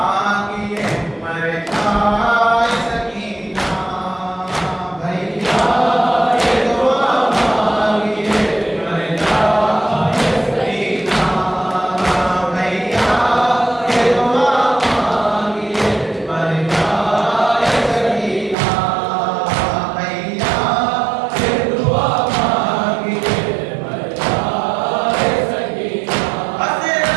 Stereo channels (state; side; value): drops out; left; at 18.6 s